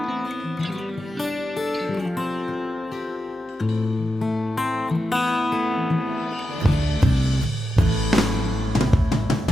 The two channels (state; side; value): normal; both; correlation 0.89